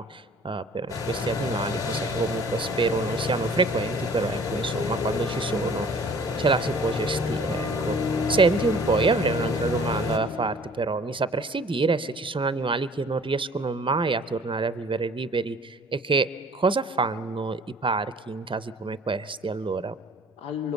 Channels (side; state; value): both; normal; correlation 0.51